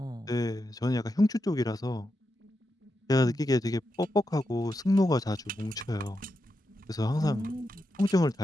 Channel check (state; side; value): normal; both; correlation 0.86